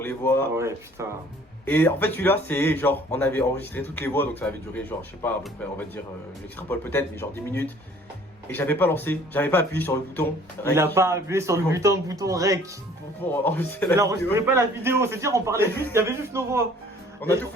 les voix. Ah ouais, putain. Et en fait, celui-là, c'est genre, on avait enregistré toutes les voix, donc ça avait duré genre, je sais pas, à peu près, on va dire, j'extrapole peut-être, mais genre 10 minutes. Et j'avais pas lancé, j'avais pas appuyé sur le bouton. Il a pas appuyé sur le bouton rec. pour enregistrer Il la vidéo. enregistrait pas la vidéo, c'est-à-dire on parlait juste, il y avait juste nos voix. On a tout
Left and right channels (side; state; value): both; normal; correlation 0.54